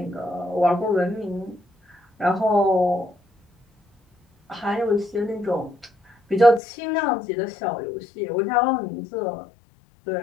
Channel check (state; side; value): drops out; right; at 6.6 s